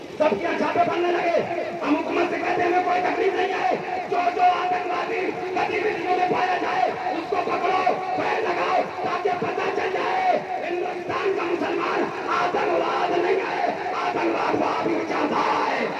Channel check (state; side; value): identical; both; correlation 1.00